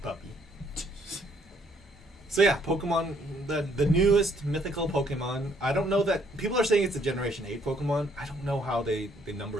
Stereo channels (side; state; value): both; normal; correlation 0.66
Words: Puppy. So yeah, Pokemon, the newest mythical Pokemon. I don't know that people are saying it's a Generation 8 Pokemon. I don't know how they